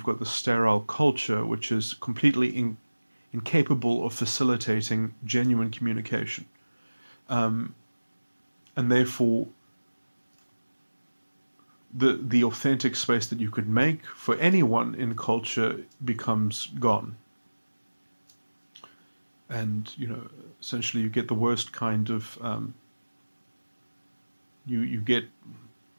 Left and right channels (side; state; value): both; inverted; correlation -1.00